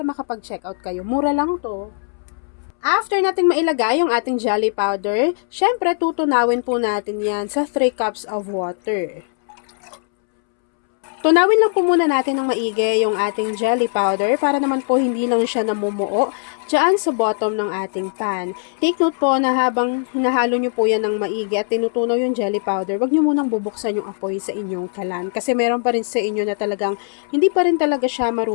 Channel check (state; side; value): silent; right; 66 dB below the other